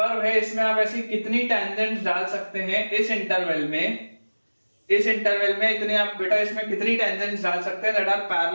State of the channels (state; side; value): inverted; both; correlation -1.00